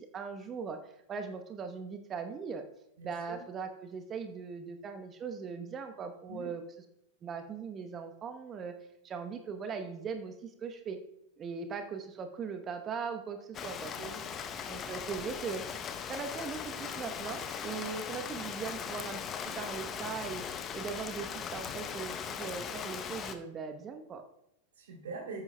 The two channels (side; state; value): both; normal; correlation 0.44